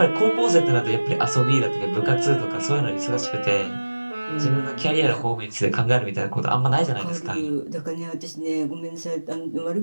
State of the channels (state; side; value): inverted; both; correlation -1.00